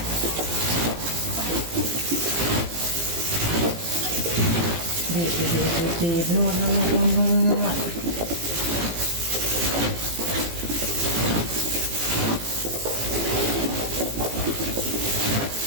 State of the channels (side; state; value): left; late; 18 ms